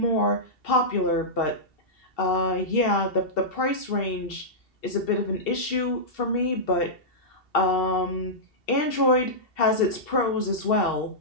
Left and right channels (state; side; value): late; right; 2.7 ms